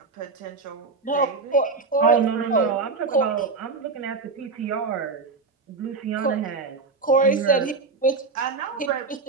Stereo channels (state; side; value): quieter; left; 4.2 dB